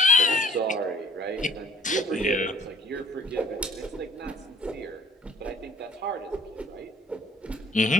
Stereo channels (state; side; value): normal; both; correlation 0.56